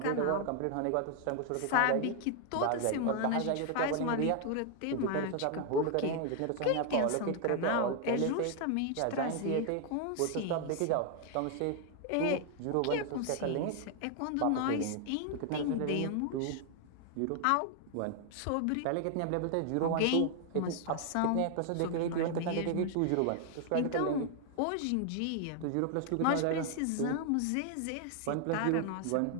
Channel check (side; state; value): both; different; correlation 0.00